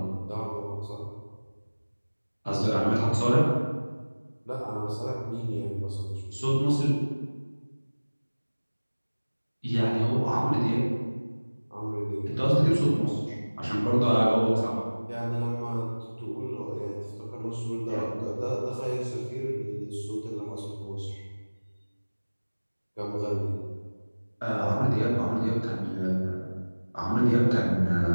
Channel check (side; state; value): both; inverted; correlation -1.00